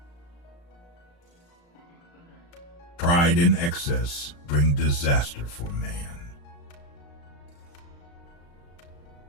Pride and excess bring disaster for man.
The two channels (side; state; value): right; late; 35 ms